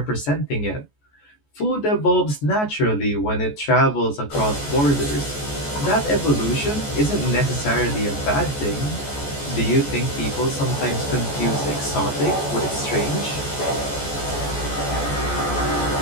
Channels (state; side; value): late; right; 14 ms